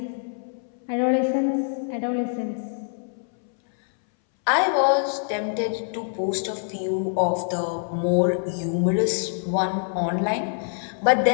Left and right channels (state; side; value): silent; right; 62 dB below the other